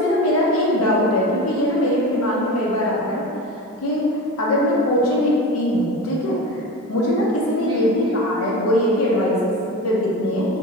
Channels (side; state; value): both; normal; correlation 0.28